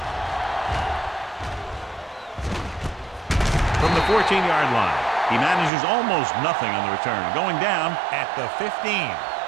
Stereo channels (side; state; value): left; drops out; at 5.7 s